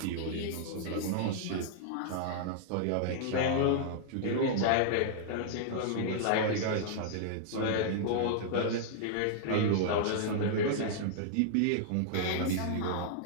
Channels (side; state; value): both; different; correlation -0.01